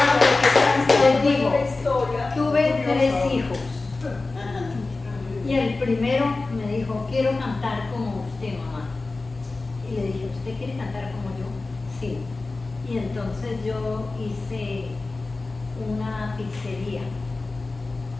les digo, tuve 3 hijos. Y el primero me dijo, quiero cantar como usted, mamá. Y le dije, ¿usted quiere cantar como yo? Sí. Y entonces yo hice una pizzería.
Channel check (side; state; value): right; quieter; 3.5 dB